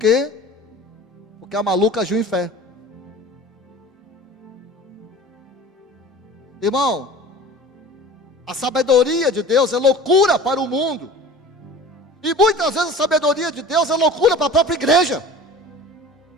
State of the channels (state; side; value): normal; both; correlation 0.40